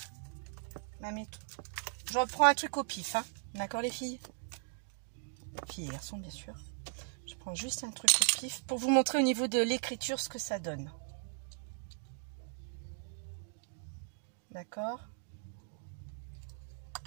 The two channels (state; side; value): silent; left; digital silence